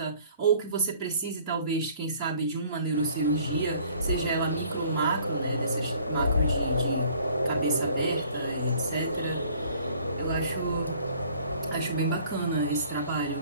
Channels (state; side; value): inverted; both; correlation -0.56